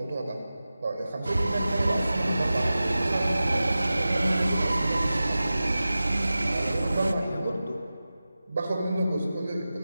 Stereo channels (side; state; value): both; inverted; correlation -0.95